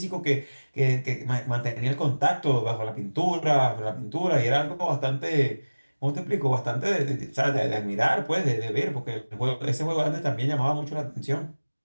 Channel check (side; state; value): both; inverted; correlation -1.00